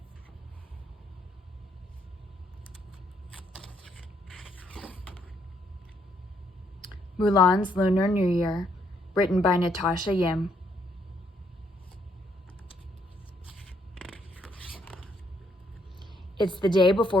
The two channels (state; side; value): normal; both; correlation 0.71